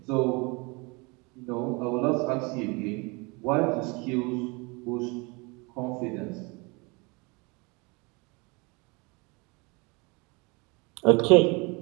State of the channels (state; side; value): quieter; left; 28.3 dB